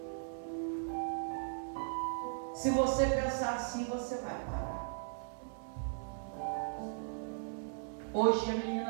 Se você pensar assim, você vai parar. Hoje a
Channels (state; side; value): silent; left; 53 dB below the other